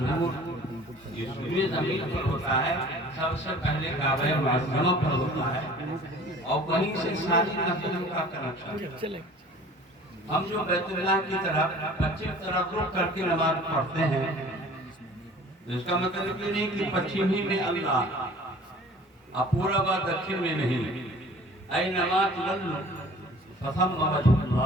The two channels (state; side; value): normal; both; correlation 0.48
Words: اس پورے زمین پر ہوتا ہے، سب سے پہلے کعبہ معظمہ پر ہوتا ہے اور وہیں سے ساری مسجدوں کا کنیکشن۔ ہم جو بیت اللہ کی طرف پچھم طرف رخ کر کے نماز پڑھتے ہیں، اس کا مطلب یہ نہیں کہ پچھم ہی میں اللہ اور پورب و دکھن میں نہیں۔ اینما تولوا فثم وجہ